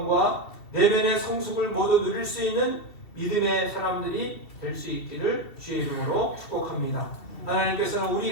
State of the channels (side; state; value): right; late; 2.7 ms